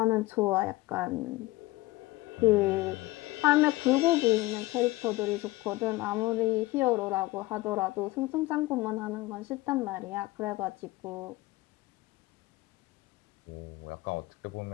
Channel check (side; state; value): right; quieter; 19.9 dB